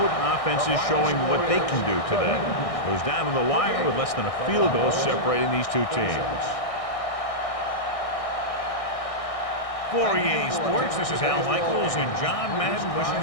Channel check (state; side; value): late; right; 1.6 ms